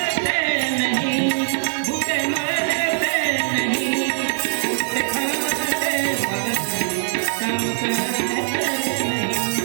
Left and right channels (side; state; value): left; silent; digital silence